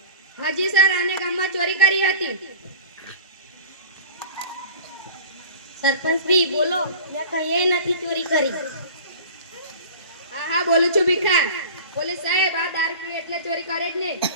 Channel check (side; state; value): both; inverted; correlation -0.40